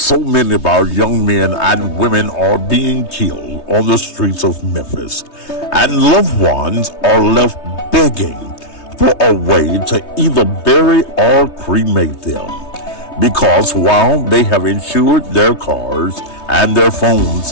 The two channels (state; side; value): late; right; 3.2 ms